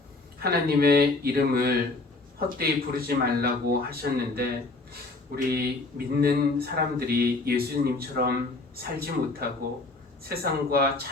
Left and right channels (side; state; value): right; quieter; 3.4 dB